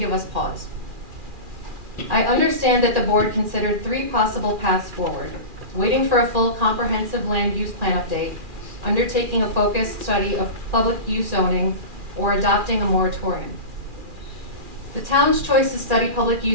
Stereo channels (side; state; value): left; late; 2.4 ms